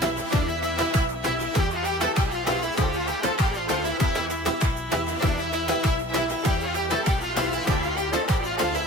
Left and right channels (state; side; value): normal; both; correlation 0.48